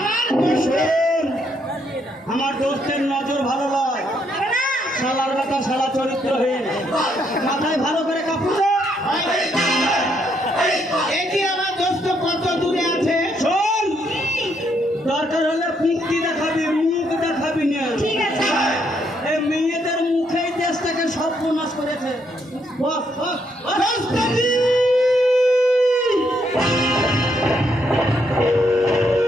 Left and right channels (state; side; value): normal; both; correlation 0.74